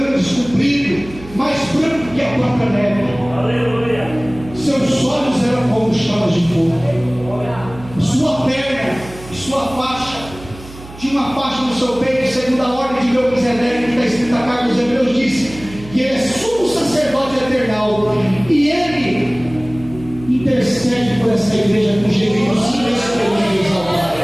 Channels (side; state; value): right; noise; hum, 17 dB below the sound